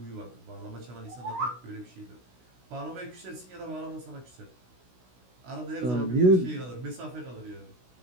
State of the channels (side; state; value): left; late; 16 ms